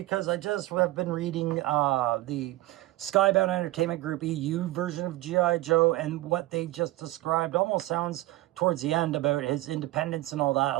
I just have been reading the Skybound Entertainment Group EU version of G.I. Joe, and what they just described almost sounds towards the end about his independence and all that, a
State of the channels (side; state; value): left; quieter; 17.6 dB